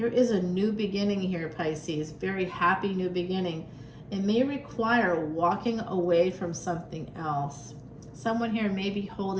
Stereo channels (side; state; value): both; identical; correlation 1.00